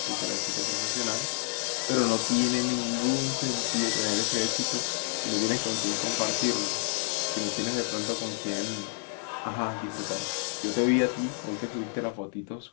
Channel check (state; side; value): silent; right; 58 dB below the other